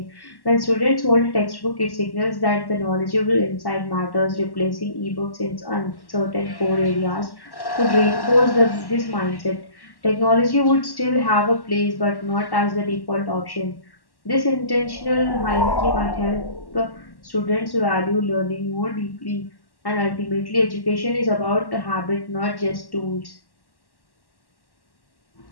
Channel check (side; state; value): right; late; 1.1 ms